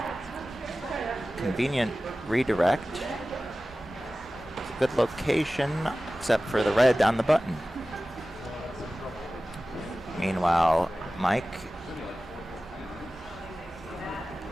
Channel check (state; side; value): normal; both; correlation 0.96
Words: Convenient redirect. Good location, except for the red on the button. Meanwhile, Mike